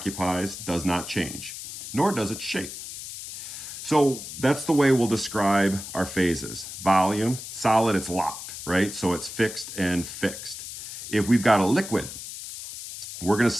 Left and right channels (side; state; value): left; noise; hiss, 10 dB below the sound